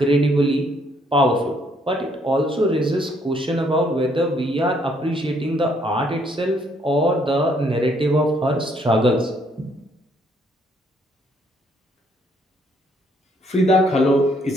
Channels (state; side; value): normal; both; correlation 0.68